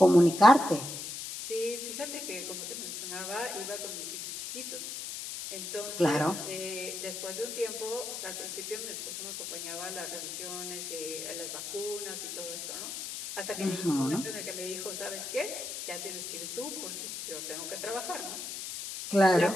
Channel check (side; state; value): left; noise; hiss, 6 dB below the sound